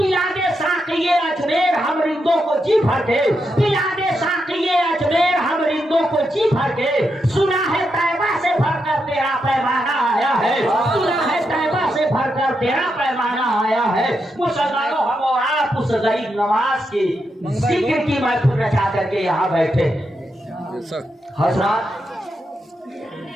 दे साक़िए अजमेर हम रिंदों को जी भर के, पिला दे साक़िए अजमेर हम रिंदों को जी भर के। सुना है तैबा से भरकर तेरा पैमाना आया है, सुना है तैबा से भरकर तेरा पैमाना आया है। मुसलमानों हम और आप उस गरीब नवाज की जिक्र की महफिल रचा करके यहाँ बैठे। हजरात,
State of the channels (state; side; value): normal; both; correlation 0.84